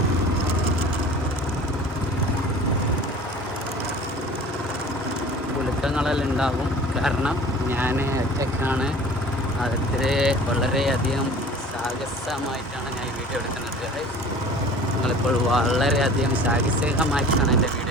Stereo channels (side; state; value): both; normal; correlation 0.43